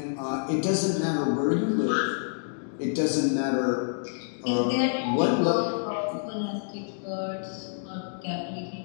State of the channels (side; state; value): right; silent; digital silence